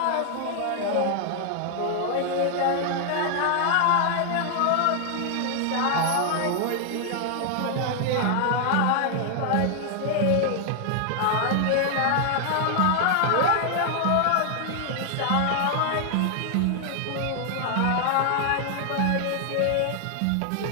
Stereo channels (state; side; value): different; both; correlation 0.00